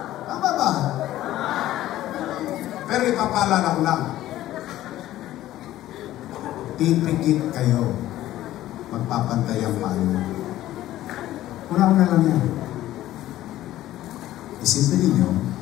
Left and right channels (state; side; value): quieter; right; 14.3 dB